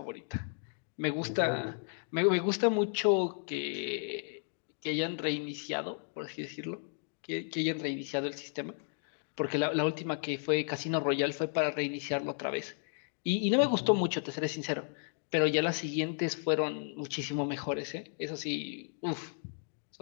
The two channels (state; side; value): silent; right; 55 dB below the other